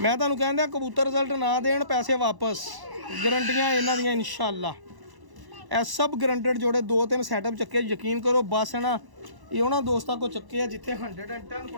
ਤੁਹਾਨੂੰ ਕਹਿੰਦਾ ਕਬੂਤਰ ਰਿਜ਼ਲਟ ਨਾ ਦੇਣ ਪੈਸੇ ਵਾਪਸ ਗਰੰਟੀਆਂ ਇਹਨਾਂ ਦੀਆਂ ਇਨਸ਼ਾਅੱਲਾ ਇਹ ਸਭ ਗਰੰਟਡ ਜੋੜੇ 2-3 ਸੈਟਅਪ ਚੱਕੇ ਯਕੀਨ ਕਰੋ ਬਸ ਨਾ ਇਹ ਉਹਨਾਂ ਦੋਸਤਾਂ ਕੋ ਚੱਕੇ ਆ ਜਿੱਥੇ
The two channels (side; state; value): left; late; 1.0 ms